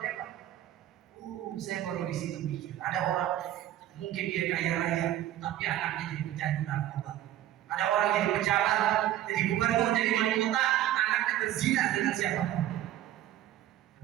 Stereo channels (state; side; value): quieter; left; 12.9 dB